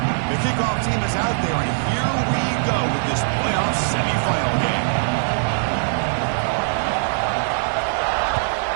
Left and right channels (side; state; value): left; silent; 62 dB below the other